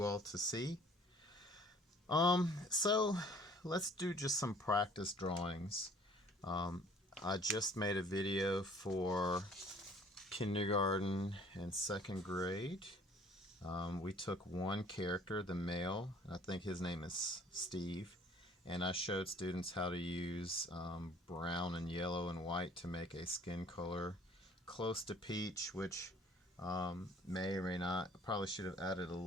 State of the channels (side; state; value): both; normal; correlation 0.54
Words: all to see. So let's do just some practice drawings. I just made a video for kindergarten and 2nd grade. We took one character, the male, I think his name is Steve, and I showed students how to use brown and yellow and white to make a skin color close to peach, which may or may not. Probably should have added a